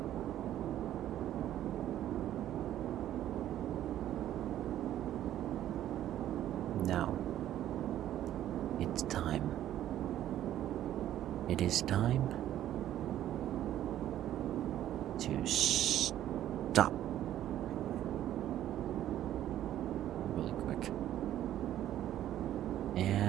Now, it's time. It is time to stop. Really quick.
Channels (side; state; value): left; quieter; 12.2 dB